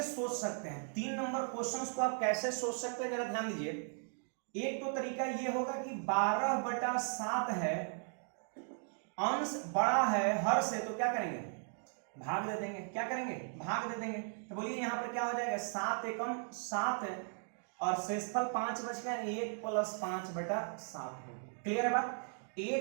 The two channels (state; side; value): silent; left; 53 dB below the other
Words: सोच सकते हैं, 3 नंबर क्वेश्चंस को आप कैसे सोच सकते हैं, जरा ध्यान दीजिए। एक तो तरीका ये होगा कि 12/7 है, अंश बड़ा है हर से, तो क्या करेंगे भाग दे देंगे। क्या करेंगे भाग दे देंगे, तो बोलिए यहां पर क्या हो जाएगा 7 एकम 7 है और शेषफल 5 बच गया, 1 + 5/7 हो गया। क्लियर है बात,